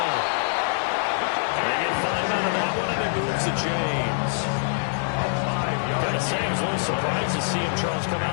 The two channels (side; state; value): right; silent; digital silence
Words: They get 5 out of that one, and it moves to James. Gotta say, I was a little surprised to see him, Charles, come out